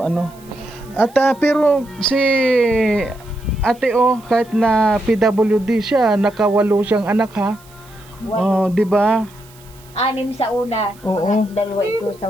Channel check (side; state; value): right; noise; hiss, 26 dB below the sound